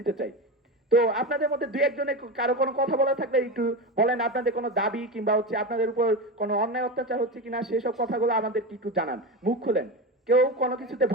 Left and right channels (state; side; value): normal; both; correlation 0.20